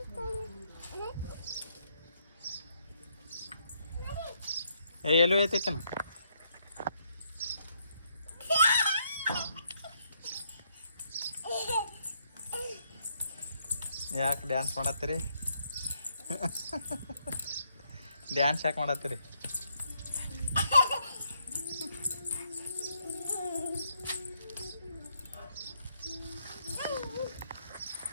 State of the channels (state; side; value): inverted; both; correlation -0.74